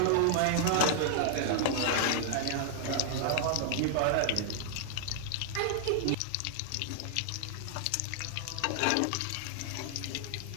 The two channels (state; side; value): different; both; correlation 0.00